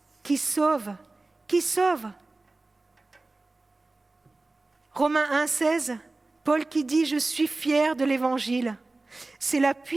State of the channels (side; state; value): left; quieter; 3.2 dB